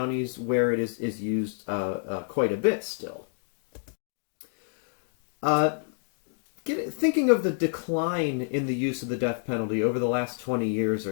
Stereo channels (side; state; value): right; silent; digital silence